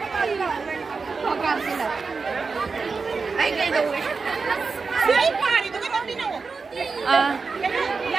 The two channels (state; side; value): quieter; left; 4.6 dB